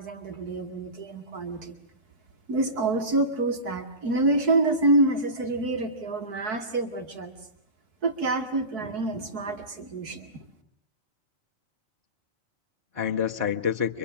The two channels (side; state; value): left; late; 4.6 ms